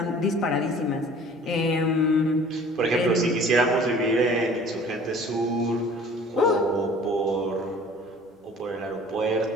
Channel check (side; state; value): both; normal; correlation 0.48